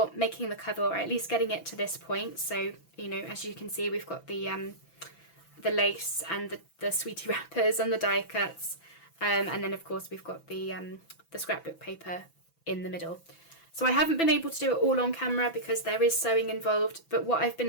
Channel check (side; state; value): right; late; 6.0 ms